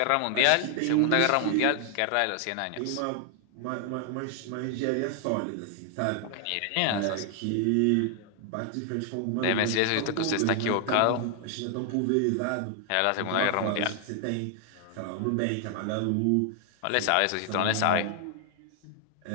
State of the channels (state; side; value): different; both; correlation 0.00